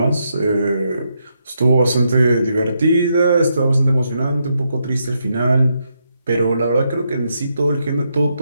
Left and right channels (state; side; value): inverted; both; correlation -0.80